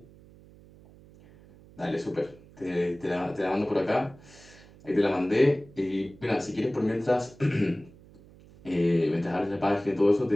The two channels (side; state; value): right; noise; hum, 23 dB below the sound